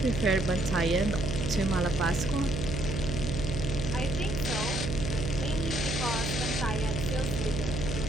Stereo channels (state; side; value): noise; right; hum, 2 dB below the sound